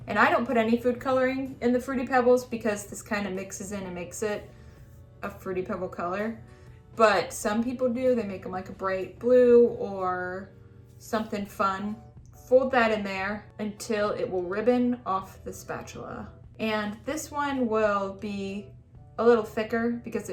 And I don't put any food coloring in the Fruity Pebbles because this kind of mixes in and makes it a Fruity Pebble color. But some people do, they make them like a bright blue or something fun. Fold that in there until it will ribbon off the spatula. And this one will be a little thicker because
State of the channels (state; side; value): identical; both; correlation 1.00